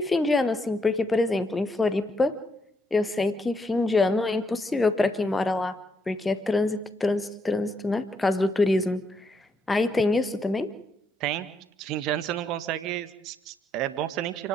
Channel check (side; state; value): both; normal; correlation 0.76